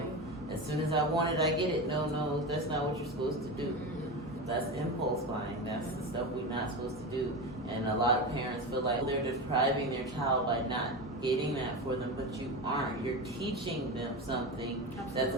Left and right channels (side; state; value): both; normal; correlation 0.22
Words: As soon as I want it, I get it. No, that's not what you're supposed to do. That's impulse buying. That's the stuff we're not supposed to do. And a lot of parents feel like they're depriving their child by not getting that for them, but you aren't. You're teaching them something that's